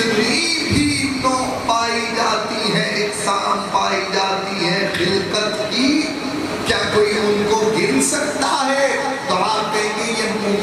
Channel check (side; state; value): both; identical; correlation 1.00